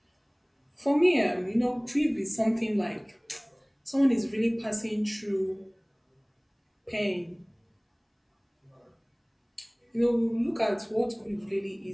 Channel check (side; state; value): both; identical; correlation 1.00